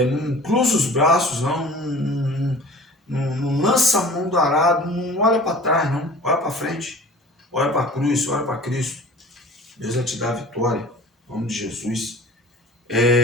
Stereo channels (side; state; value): both; normal; correlation 0.43